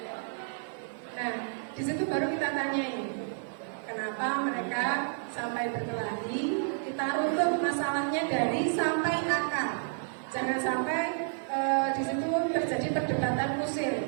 Nah, di situ baru kita tanyain kenapa mereka sampai berkelahi. Kita runtut masalahnya dari sampai akar. Jangan sampai di situ terjadi perdebatan kusir.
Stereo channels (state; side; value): silent; left; digital silence